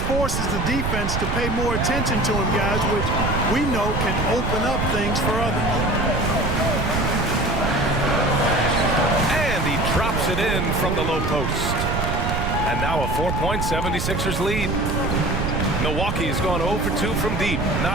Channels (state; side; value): noise; right; rumble, 1 dB below the sound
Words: forces the defense to pay more attention to him, guys, which we know can open up things for others. And he drops it in from the low post. And now a 4-point 76ers lead. Milwaukee has gone 0 for 2 from deep.